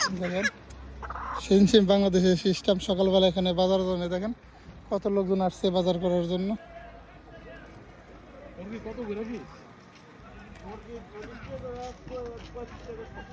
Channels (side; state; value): both; identical; correlation 1.00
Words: দেখেন সেম বাংলাদেশের সিস্টেম, সকালবেলা এখানে বাজার জন্য দেখেন কত লোকজন আসছে বাজার করার জন্য।